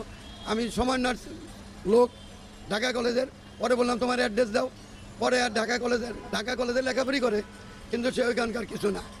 আমি সমন্বয়ের লোক ঢাকা কলেজের, পরে বললাম তোমার অ্যাড্রেস দাও, পরে আর ঢাকা কলেজে লেখাপড়ি করে, কিন্তু সে ওইখানকার কিছু না।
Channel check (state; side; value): identical; both; correlation 1.00